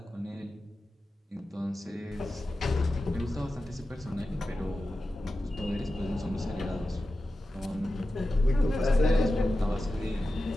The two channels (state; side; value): normal; both; correlation 0.93